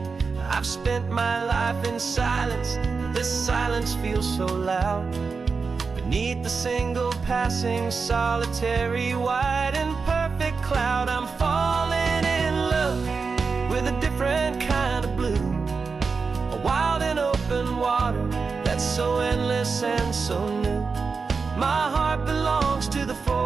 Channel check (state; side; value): quieter; left; 4.8 dB